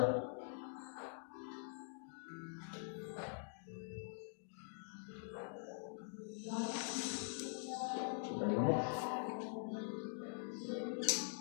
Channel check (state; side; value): silent; right; digital silence